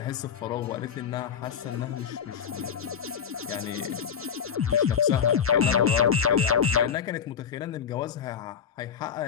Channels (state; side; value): quieter; right; 7.5 dB